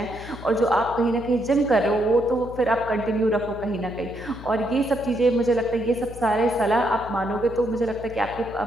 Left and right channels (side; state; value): left; noise; hum, 14 dB below the sound